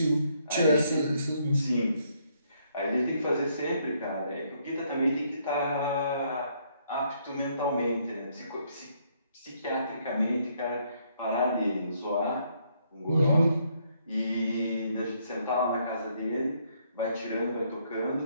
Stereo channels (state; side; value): inverted; both; correlation -0.70